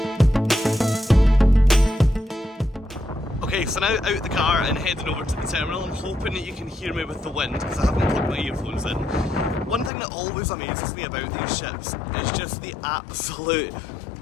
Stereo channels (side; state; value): right; drops out; at 9.9 s